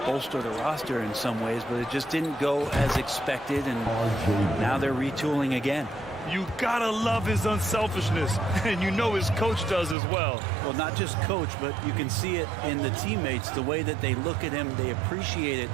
bolster the roster in some ways, but it just didn't go as expected, and now they're retooling again. You gotta love his unselfishness, and you know his coach does as well. Well, not just coach, but you can see it in the teammates, the way that they look at him. They appreciate it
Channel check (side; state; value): left; drops out; at 10.0 s